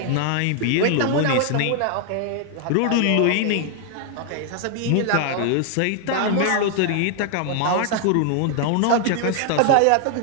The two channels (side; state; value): both; different; correlation 0.00